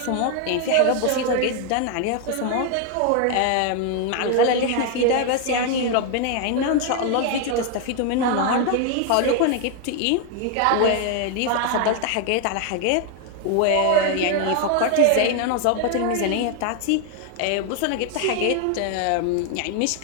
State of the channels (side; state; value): both; different; correlation 0.01